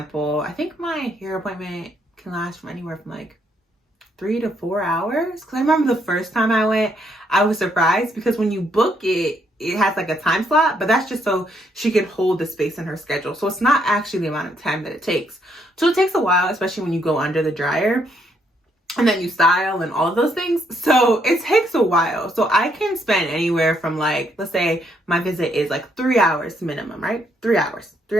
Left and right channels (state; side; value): normal; both; correlation 0.73